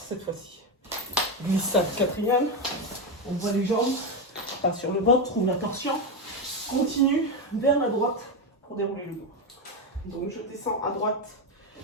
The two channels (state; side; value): normal; both; correlation 0.10